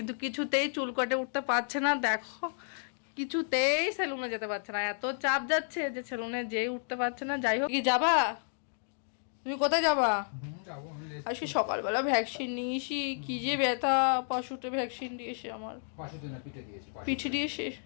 কিছুতেই চুল কাটে উঠতে পারছে না। দেখো কিছুতেই সেলুনে যেতে পারছে না, এত চাপ যাচ্ছে যে সেলুনে যেই উঠতে পারছে না। যাই হোক, কি যাবা তুমি? কোথায় যাবা? আজকে সকালবেলা ভ্যাকসিন নিয়েছি, কি যে ব্যথা, পাশুতে ভ্যাকসিন দিয়েছে আমার। পিঠে দিয়েছে?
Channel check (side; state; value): right; silent; digital silence